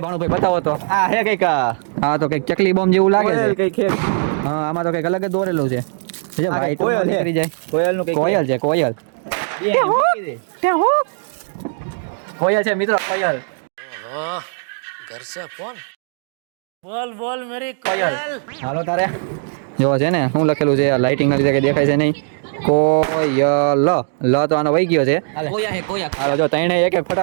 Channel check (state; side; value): silent; left; digital silence